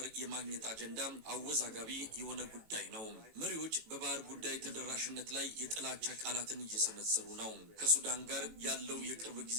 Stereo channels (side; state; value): left; late; 18 ms